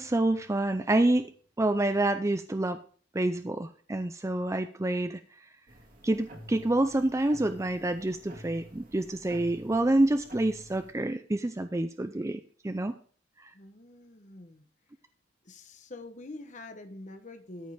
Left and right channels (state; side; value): normal; both; correlation 0.85